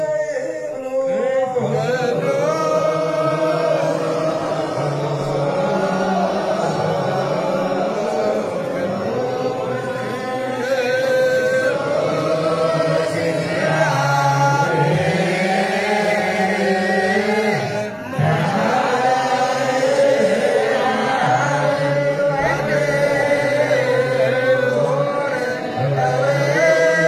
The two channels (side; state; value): both; identical; correlation 1.00